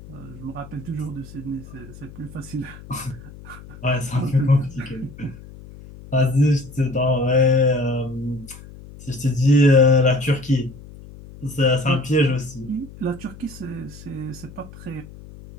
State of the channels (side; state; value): left; noise; hum, 17 dB below the sound